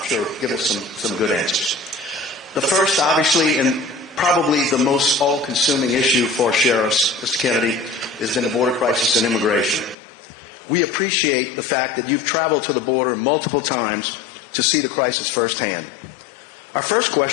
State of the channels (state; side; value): drops out; right; at 10.0 s